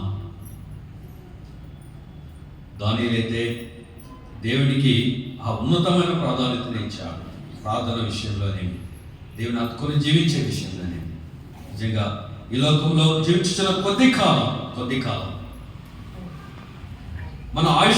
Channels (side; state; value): both; identical; correlation 1.00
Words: దానిలైతే దేవునికి ఆ ఉన్నతమైన ప్రాధాన్యతను ఇచ్చాడు. ప్రార్థన విషయంలోనే, దేవుని హత్తుకొని జీవించే విషయంలోనే. నిజంగా ఈ లోకంలో జీవించిన కొద్ది కాలం మన